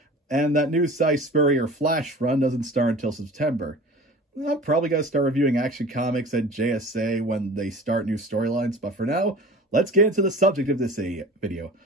and that new Cy Spurrier Flash run doesn't start until September. I'm probably going to start reviewing Action Comics and JSA when they start new storylines, but for now, let's get into the subject of this video.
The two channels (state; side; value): normal; both; correlation 0.40